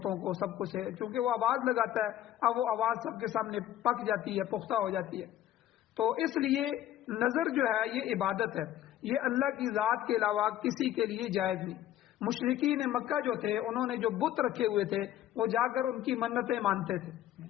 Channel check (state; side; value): quieter; right; 12.6 dB